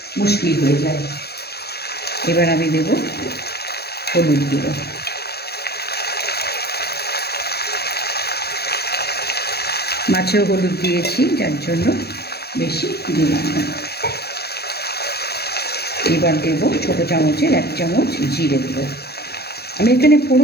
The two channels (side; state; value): right; late; 0.47 ms